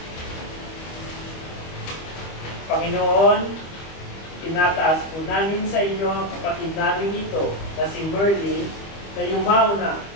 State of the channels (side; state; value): right; late; 25 ms